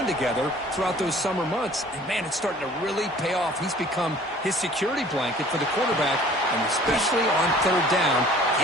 together throughout those summer months. And, man, it's starting to really pay off. He's become his security blanket for the quarterback, and especially on third down,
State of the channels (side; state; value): both; normal; correlation 0.50